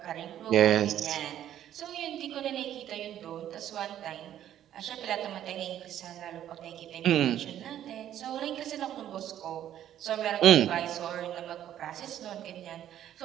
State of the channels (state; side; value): quieter; left; 11.3 dB